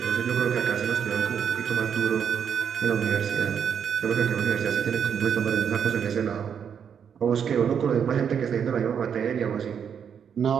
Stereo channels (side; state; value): left; quieter; 7.7 dB